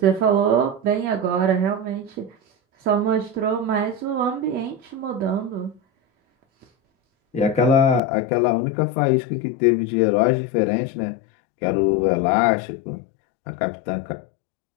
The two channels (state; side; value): drops out; right; at 8.0 s